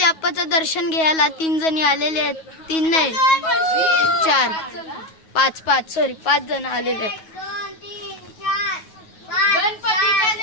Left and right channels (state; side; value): late; right; 9.3 ms